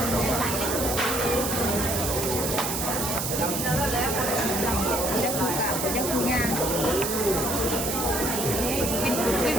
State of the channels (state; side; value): noise; right; hiss, 2 dB below the sound